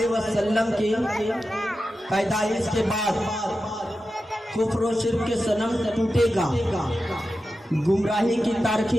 وسلم کی پیدائش کے بعد کفر و شرک کے صنم ٹوٹے گا، گمراہی کی تاریخی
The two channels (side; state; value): both; normal; correlation 0.91